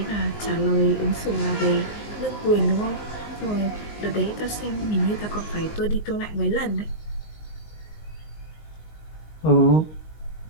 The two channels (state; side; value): late; right; 19 ms